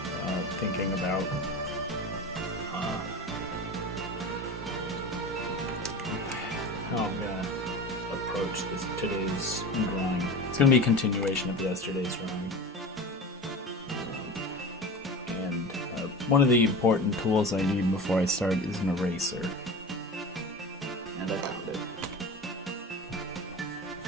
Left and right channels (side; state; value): both; normal; correlation 0.31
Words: thinking about how I'm gonna approach today's drawing. It's gonna be a continuation of yesterday's drawing. One of the important tools I need before I start is an eraser. And I found it.